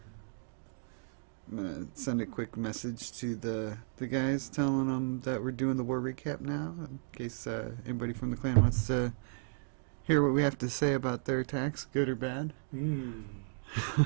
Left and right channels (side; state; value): left; silent; digital silence